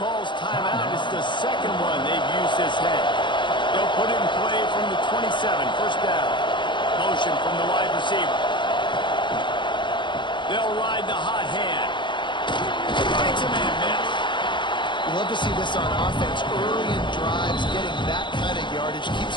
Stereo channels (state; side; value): late; right; 0.23 ms